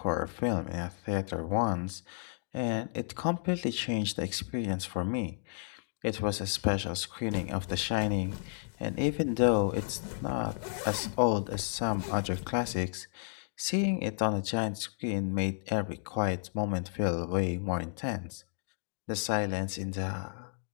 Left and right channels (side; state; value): right; silent; digital silence